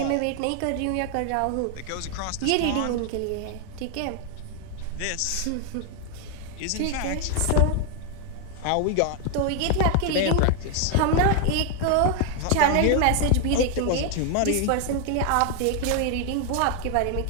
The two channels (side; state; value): both; different; correlation 0.00